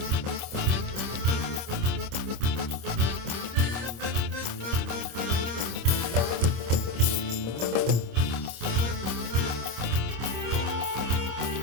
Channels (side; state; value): left; late; 26 ms